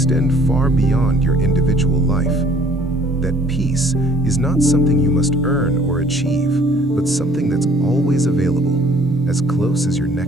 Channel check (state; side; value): normal; both; correlation 0.58